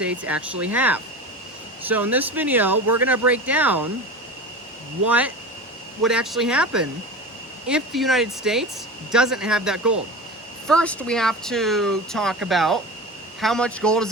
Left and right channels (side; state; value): both; normal; correlation 0.30